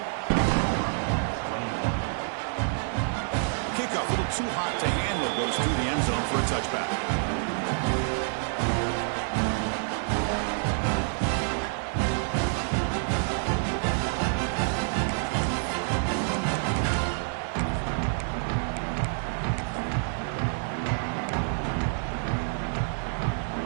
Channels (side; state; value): left; silent; 59 dB below the other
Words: Kickoff, a little too hot to handle, goes through the end zone for a touchback.